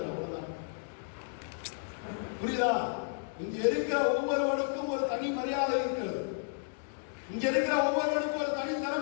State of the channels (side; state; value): right; silent; digital silence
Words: அவ்வளவுதான். புரியுதா? இங்க இருக்கிற ஒவ்வொருவனுக்கும் ஒரு தனி மரியாதை இருக்கிறது. இங்க இருக்கிற ஒவ்வொருவனுக்கும் ஒரு தனி